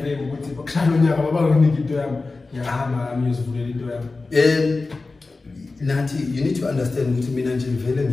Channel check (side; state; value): right; quieter; 3.6 dB